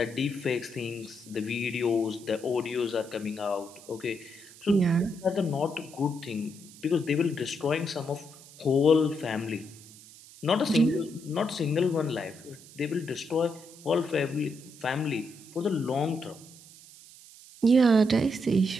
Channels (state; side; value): noise; right; hiss, 20 dB below the sound